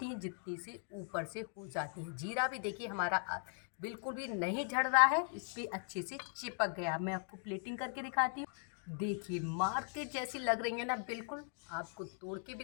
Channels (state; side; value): silent; right; 52 dB below the other